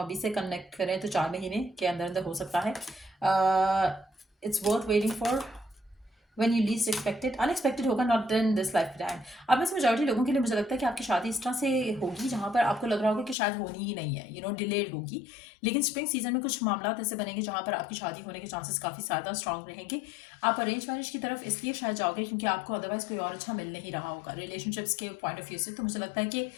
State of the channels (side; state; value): right; drops out; at 13.4 s